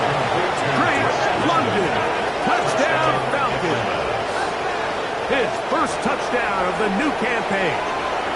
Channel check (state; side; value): identical; both; correlation 1.00